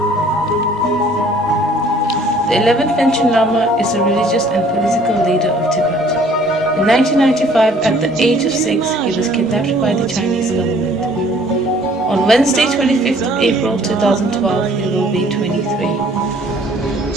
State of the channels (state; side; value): normal; both; correlation 0.57